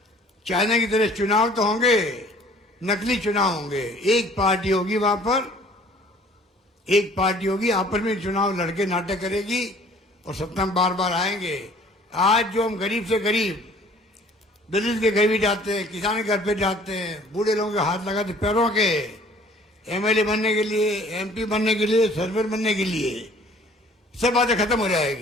चाइना की तरह चुनाव तो होंगे, नकली चुनाव होंगे। एक पार्टी होगी वहां पर, एक पार्टी होगी, आपस में चुनाव लड़के नाटक करेगी और सत्ता में बार बार आएंगे। आज जो हम गरीब से गरीब, दलित के घर भी जाते हैं, किसान के घर पे जाते हैं, बूढ़े लोगों के हाथ लगाते पैरों के, एमएलए बनने के लिए, एमपी बनने के लिए, सरपंच बनने के लिए, सब बातें खत्म हो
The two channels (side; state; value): both; normal; correlation 0.53